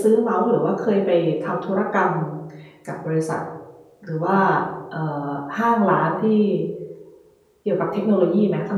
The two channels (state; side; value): identical; both; correlation 1.00